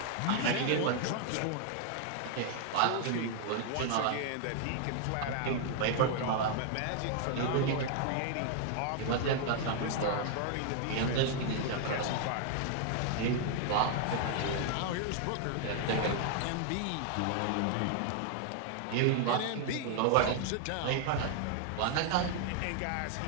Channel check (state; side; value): different; both; correlation 0.00